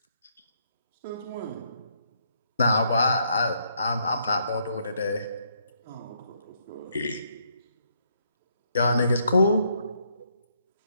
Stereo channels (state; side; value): inverted; both; correlation -0.73